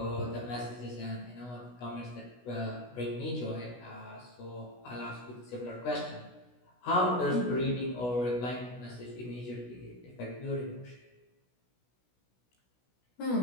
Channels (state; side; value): late; right; 16 ms